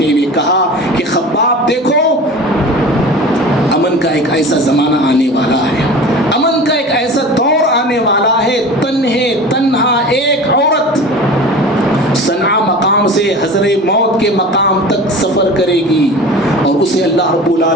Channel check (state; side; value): normal; both; correlation 0.37